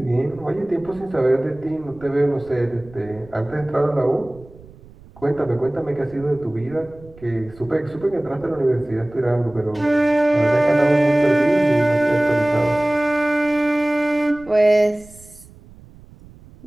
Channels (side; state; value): right; noise; rumble, 23 dB below the sound